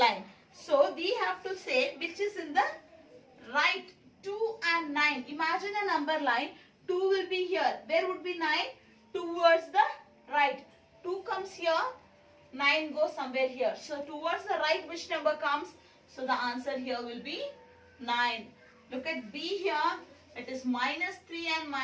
So we have to say which is in the right. 2 and 9. Imagine a number line. 2 will be here. Where would be 9? Towards the right. 2 comes here. 9 goes somewhere here. So towards the right, which number comes? So the answer here will be 9. Look at B here. It is -3 and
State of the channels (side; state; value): both; identical; correlation 1.00